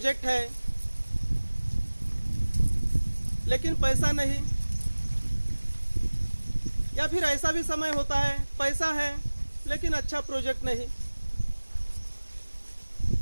है लेकिन पैसा नहीं, या फिर ऐसा भी समय होता है पैसा है लेकिन अच्छा प्रोजेक्ट नहीं।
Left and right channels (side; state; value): both; inverted; correlation -1.00